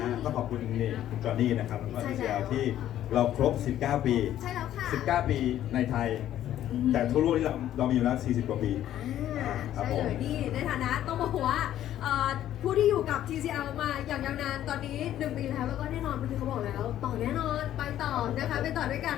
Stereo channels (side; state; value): right; quieter; 12.0 dB